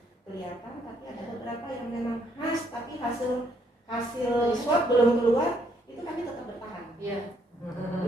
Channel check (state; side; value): normal; both; correlation 0.70